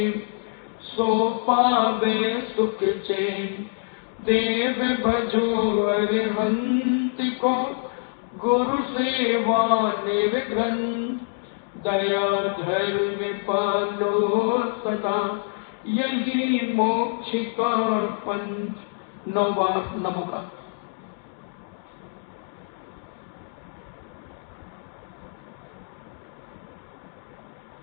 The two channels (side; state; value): right; silent; digital silence